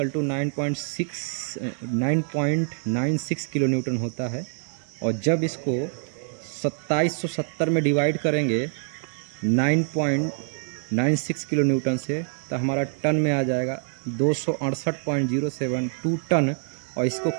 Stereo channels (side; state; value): left; silent; 60 dB below the other